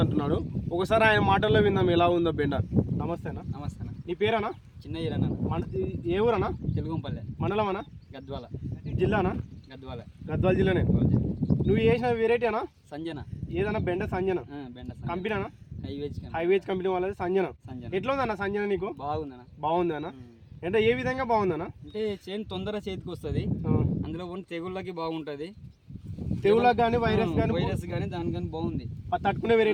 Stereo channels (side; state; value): both; identical; correlation 1.00